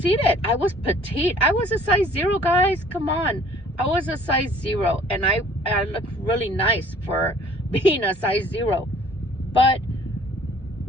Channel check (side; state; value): both; normal; correlation 0.54